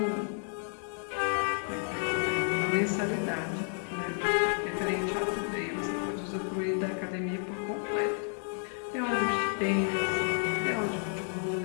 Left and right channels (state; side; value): silent; right; 57 dB below the other